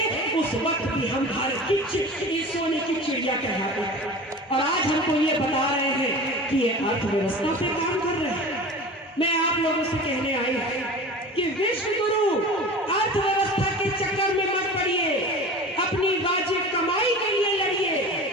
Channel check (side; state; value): both; normal; correlation 0.35